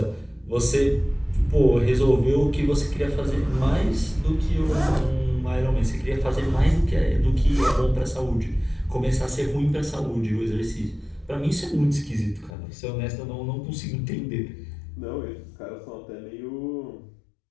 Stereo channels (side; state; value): right; drops out; at 12.5 s